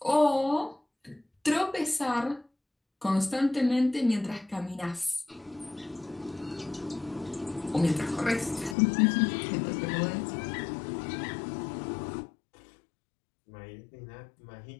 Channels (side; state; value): right; drops out; at 8.8 s